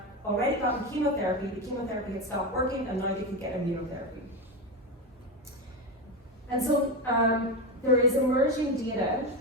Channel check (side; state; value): both; normal; correlation 0.16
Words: already gotten chemotherapy, the chemotherapy had stopped working, and now they could get immunotherapy. And so there is emerging data